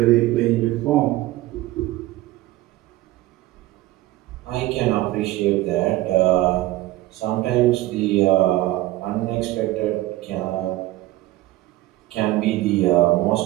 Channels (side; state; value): left; quieter; 16.9 dB